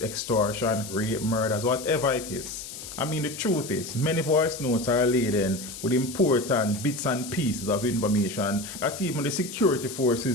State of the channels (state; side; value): noise; left; hiss, 11 dB below the sound